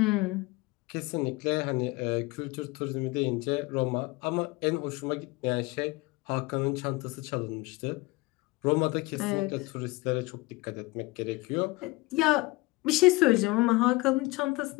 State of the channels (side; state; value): right; quieter; 22.4 dB